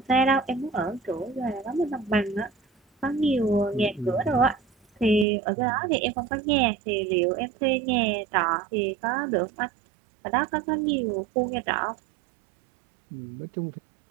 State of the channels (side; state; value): left; drops out; at 5.2 s